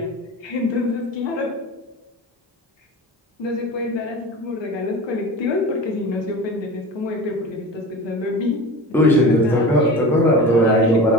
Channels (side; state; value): both; normal; correlation 0.32